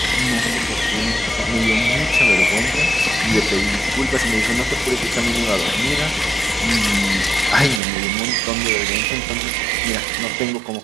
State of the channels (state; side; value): drops out; left; at 7.8 s